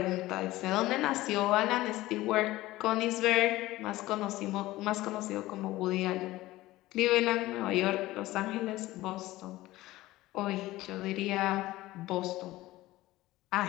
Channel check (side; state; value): right; quieter; 17.4 dB